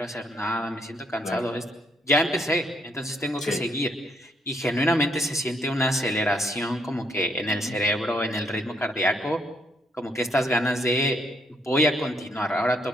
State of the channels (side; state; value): both; normal; correlation 0.72